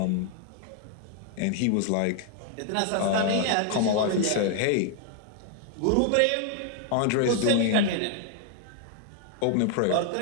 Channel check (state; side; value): different; both; correlation 0.00